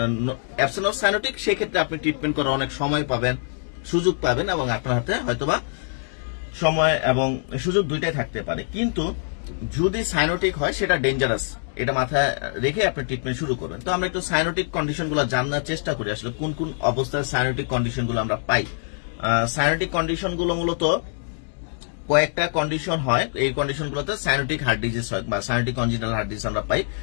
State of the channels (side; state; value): right; silent; digital silence